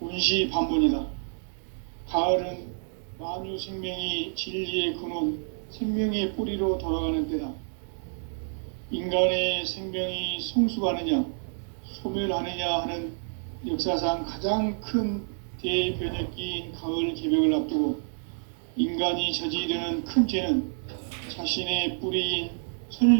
원시반복이다. 가을은 만유 생명이 진리의 근원, 생명의 뿌리로 돌아가는 때다. 인간의 생명이 성숙하느냐, 소멸하느냐 하는 역사상 가장 큰 대변혁기인 가을 개벽을 앞두고 인간이 저지르는 큰 죄는 자신의 뿌리인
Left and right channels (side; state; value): left; silent; digital silence